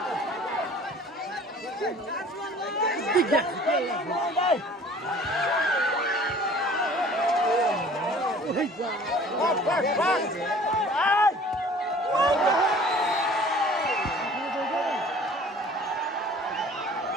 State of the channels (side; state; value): both; normal; correlation 0.49